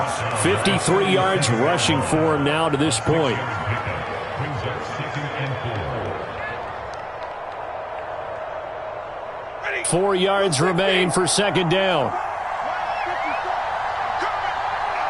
53 yards rushing for him now to this point. Ready. 4 yards remain for second down.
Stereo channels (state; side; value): identical; both; correlation 1.00